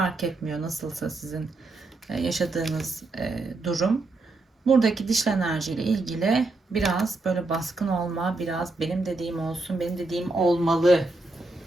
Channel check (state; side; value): quieter; left; 3.1 dB